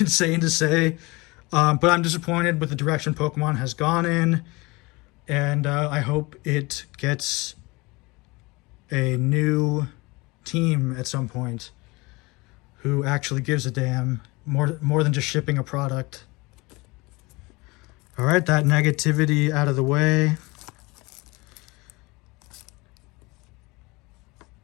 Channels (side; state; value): right; quieter; 24.2 dB